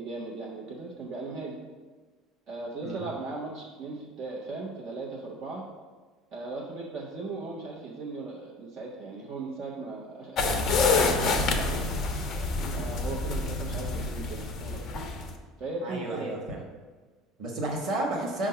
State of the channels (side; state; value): both; normal; correlation 0.42